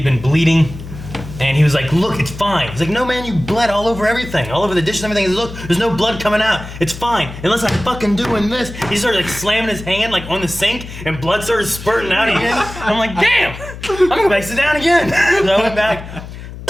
been bleeding, and he was like, look, it's fine. He's like, no man, you bled all over everything, all over the dishes and everything. He's like, look, there's no blood coming out. It's fine, unless I'm fucking doing this. He started like slamming his hand like on the sink, and blood started spurting out again. I'm like, damn, I'm gonna go back sit down again. So I went back,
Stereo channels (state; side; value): noise; left; hum, 12 dB below the sound